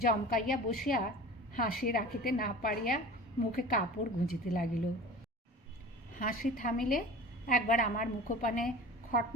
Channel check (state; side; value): normal; both; correlation 0.38